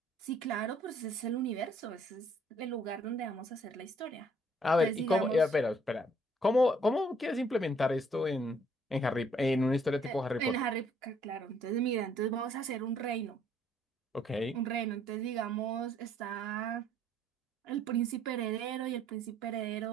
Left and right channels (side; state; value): both; normal; correlation 0.64